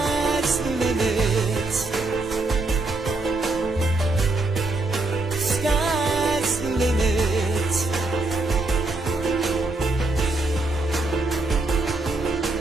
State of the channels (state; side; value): quieter; left; 3.1 dB